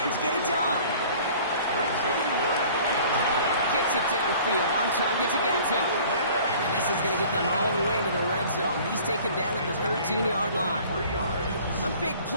get it done? Gets it downfield, on target to Gatson. And this is going to get them all the way into the red zone. He's taken down at the 13-yard line. A big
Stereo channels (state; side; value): inverted; both; correlation -0.49